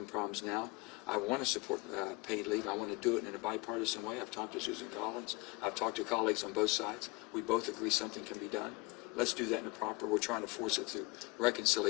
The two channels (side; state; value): right; quieter; 25.6 dB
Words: problems now. I want to support paid leave. I want to do it in a bipartisan way. I've talked to Susan Collins. I've talked to colleagues on both sides. We both agree something can be done. Let's do that in a proper. We're trying to force it through